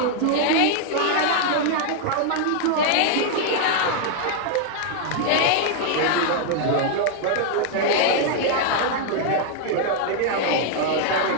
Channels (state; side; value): different; both; correlation 0.00